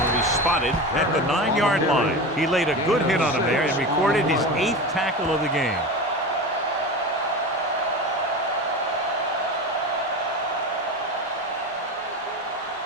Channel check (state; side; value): normal; both; correlation 0.26